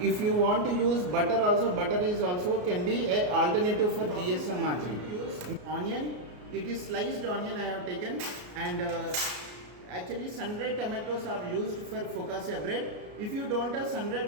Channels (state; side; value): late; left; 33 ms